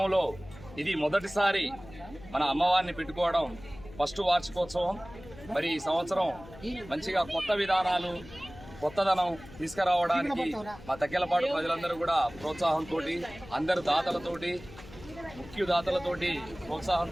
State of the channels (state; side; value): noise; left; hum, 18 dB below the sound